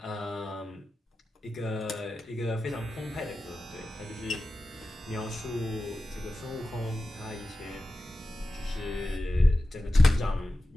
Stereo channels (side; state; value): both; normal; correlation 0.94